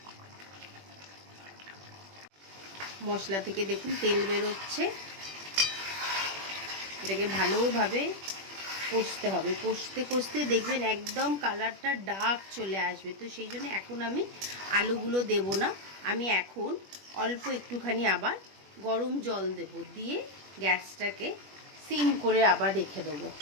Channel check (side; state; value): left; late; 21 ms